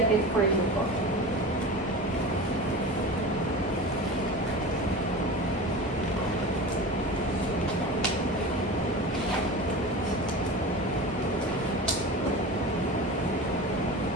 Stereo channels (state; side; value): normal; both; correlation 0.31